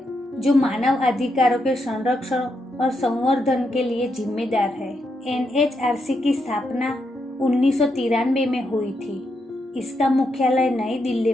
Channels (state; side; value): normal; both; correlation 0.81